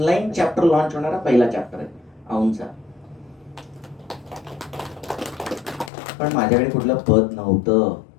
चॅप्टर लॉन्च होणारा पहिला चॅप्टर आहे औनचा. पण माझ्याकडे कुठलं पद नव्हतं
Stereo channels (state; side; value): drops out; right; at 5.9 s